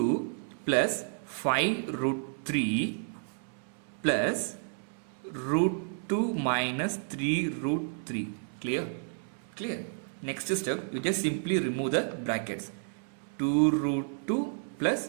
plus 5 root 3 plus root 2 minus 3 root 3. Clear? Clear? Next step, you just simply remove the brackets. 2 root 2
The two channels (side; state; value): left; silent; 57 dB below the other